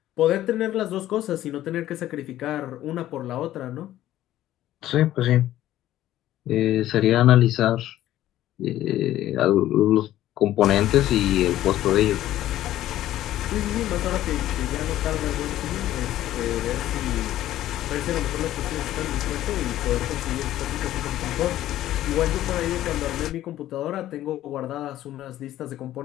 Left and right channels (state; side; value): quieter; right; 13.6 dB